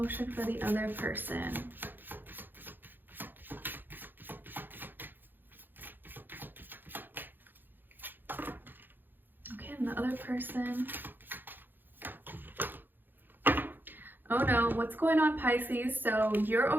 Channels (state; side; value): late; left; 0.093 ms